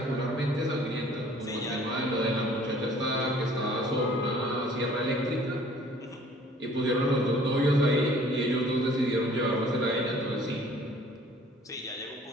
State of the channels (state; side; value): normal; both; correlation 0.54